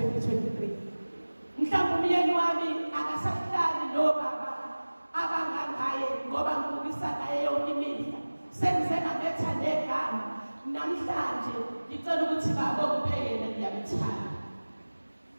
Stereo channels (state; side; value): inverted; both; correlation -1.00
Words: Mhlawumbe umyeni wami akasahlali nobaba abangangaye ngoba ngibukisa naye yonke imihla. Sengize ngametha negama namhlanje ngicela ukuthi baba ongiphekele ngiyamthanda.